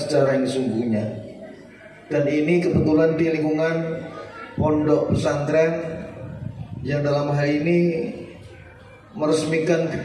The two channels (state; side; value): identical; both; correlation 1.00